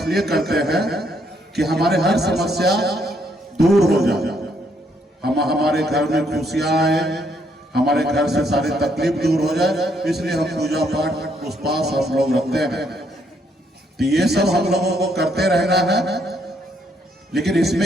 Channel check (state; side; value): normal; both; correlation 0.72